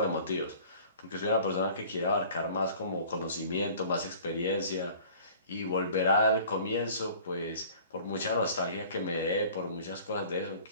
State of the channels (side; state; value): both; inverted; correlation -0.48